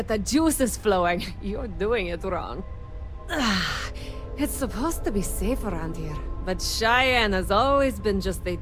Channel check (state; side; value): identical; both; correlation 1.00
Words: the juices flowing, you're doing it wrong. It's supposed to be safe around here, but Cheyenne has always been just a